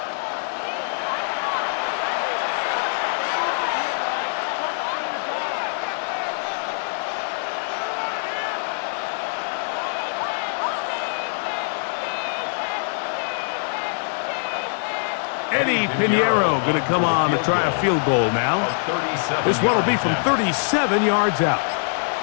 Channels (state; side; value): silent; right; 63 dB below the other